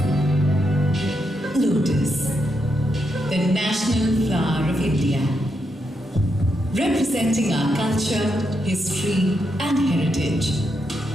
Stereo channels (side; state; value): both; normal; correlation 0.82